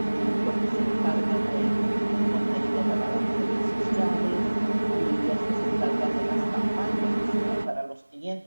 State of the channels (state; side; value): inverted; both; correlation -1.00